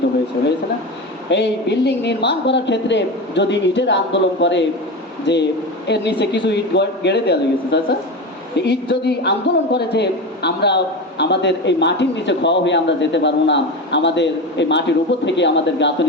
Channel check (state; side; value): normal; both; correlation 0.23